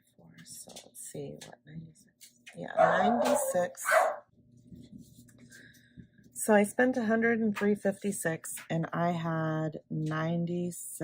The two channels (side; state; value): both; identical; correlation 1.00